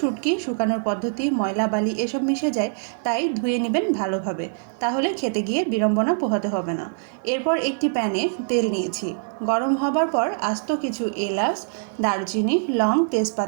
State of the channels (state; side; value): silent; left; digital silence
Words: শুকানোর পদ্ধতি ময়লা বালি এসব মিশে যায়, তাই ধুয়ে নেবেন ভালোভাবে, তাহলে খেতে গিয়ে বিড়ম্বনা পোহাতে হবে না। এরপর একটি প্যানে তেল নিয়েছি, গরম হবার পর আস্ত কিছু এলাচ, দারুচিনি, লং,